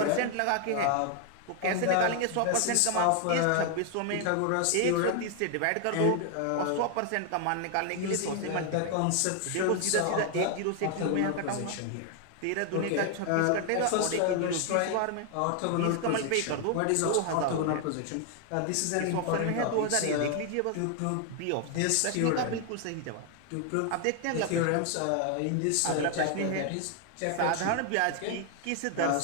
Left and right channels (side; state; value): both; different; correlation 0.00